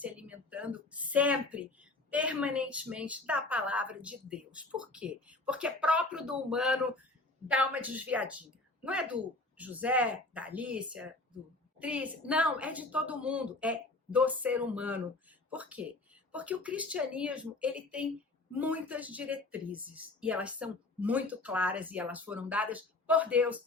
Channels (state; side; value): quieter; right; 3.0 dB